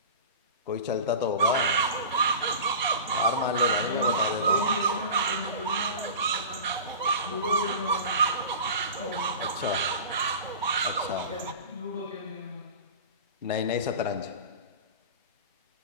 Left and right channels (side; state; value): both; inverted; correlation -0.35